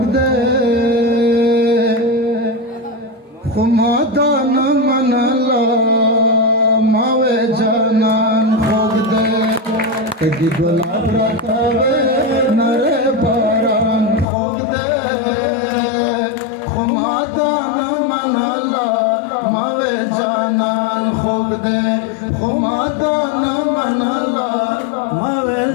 ده خمادان منلا ماوے جانان خوگ ده تگی گلاب را توه نر باران خوگ ده خمادان منلا ماوے جانان خوگ ده خمادان منلا ماوے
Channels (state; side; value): drops out; right; at 14.2 s